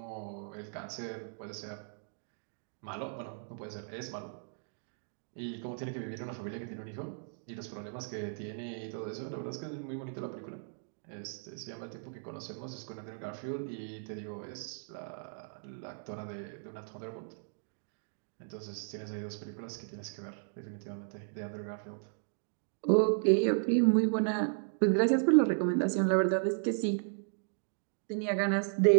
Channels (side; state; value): left; silent; digital silence